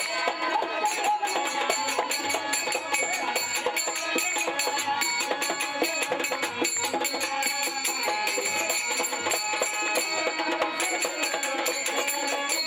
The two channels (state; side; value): identical; both; correlation 1.00